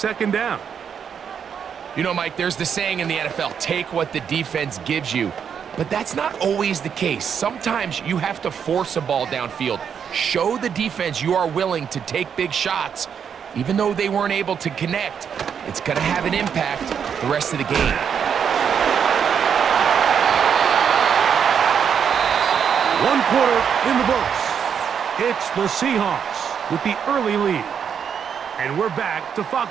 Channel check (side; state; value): left; quieter; 7.5 dB